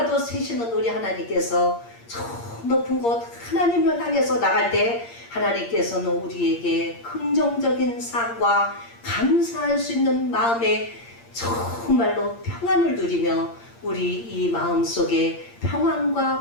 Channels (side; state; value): right; late; 8.6 ms